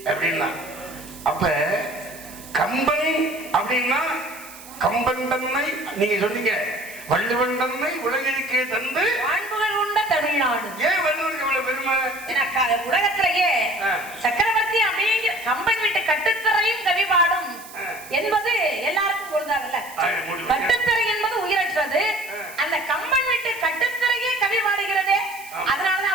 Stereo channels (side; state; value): right; noise; hiss, 17 dB below the sound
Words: அப்படின்னா. அப்ப கம்பன் அப்படின்னா கம்பன் தன்னை நீங்க சொன்னீங்க, வள்ளுவன் தன்னை உலகிற்கே தந்து வாழ்வுகள் உண்ட தமிழ்நாடு. ஏன் வள்ளுவருக்கு இவ்வளவு பெருமை? உலகத்திலேயே சக்கரவர்த்தி அப்படிங்கிற கம்பன் வீட்டு கட்டுத்தரையும் கவி பாடும் என்பது எல்லாருக்கும் பொருந்தாதல்ல. கட்டுத்தரை என்பது உயிரற்றது. அந்த கம்பன் வீட்டு கட்டுத்தரையே கவி பாடுகிறதே, அதனாலதான்